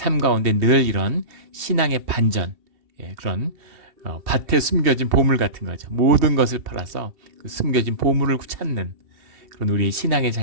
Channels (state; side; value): late; left; 2.7 ms